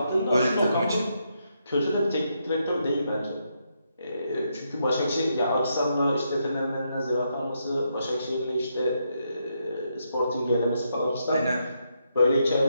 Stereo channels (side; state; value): both; inverted; correlation -0.80